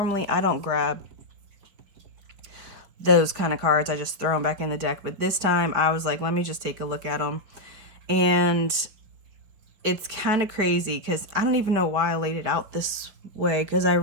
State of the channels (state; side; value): late; left; 5.0 ms